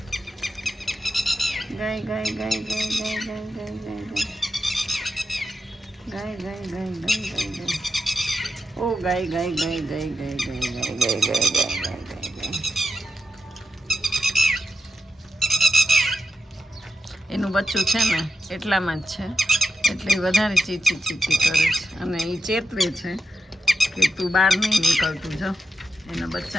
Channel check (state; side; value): normal; both; correlation 0.87